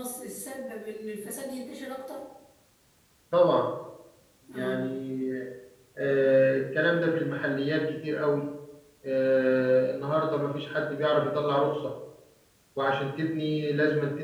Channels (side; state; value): both; identical; correlation 1.00